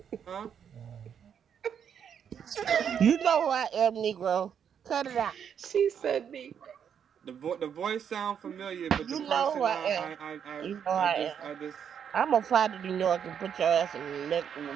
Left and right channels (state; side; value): quieter; left; 8.1 dB